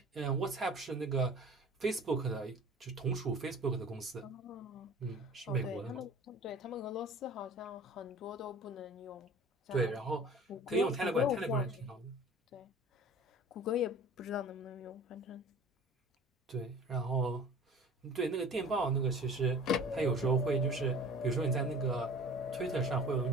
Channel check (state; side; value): normal; both; correlation 0.44